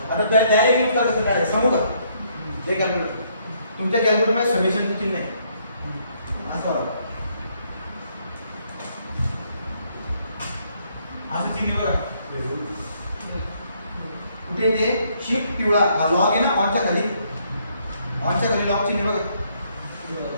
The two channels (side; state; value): both; inverted; correlation -0.70